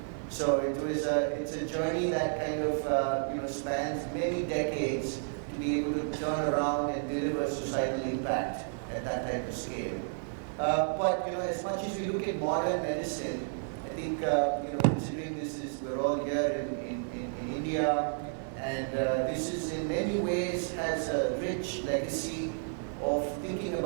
So it's a journey that kind of spans many decades to be able to turn around and deliver societal impact at that type of scale. But as much as we look at modern medicine, I think considering we're all here in India, and this is in many ways has a rich legacy of thinking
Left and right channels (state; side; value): silent; left; digital silence